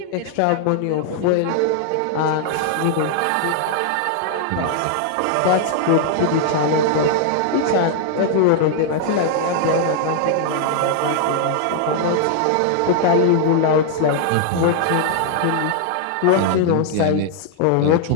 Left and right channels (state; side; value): different; both; correlation 0.00